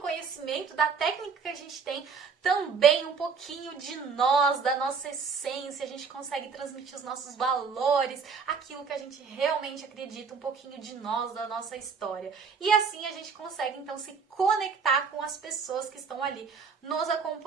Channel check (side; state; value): left; quieter; 5.6 dB